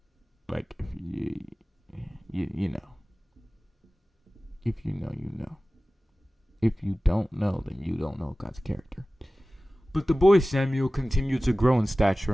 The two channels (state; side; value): normal; both; correlation 0.97